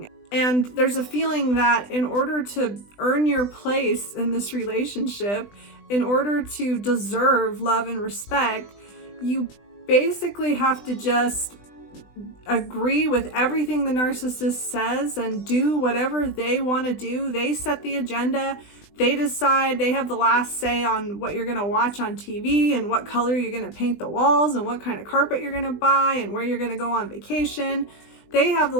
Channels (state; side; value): late; right; 20 ms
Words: And there's a feeling that in order to earn your place in this relationship, in order to deserve love and respect, you basically have to just agree with everything the narcissist says and do whatever they want to do. They set the agenda. They decide, they have the last say on what you're going to watch on TV and what color you're going to paint the walls and what kind of carpet you're going to buy and where you're going to go on vacation. They have the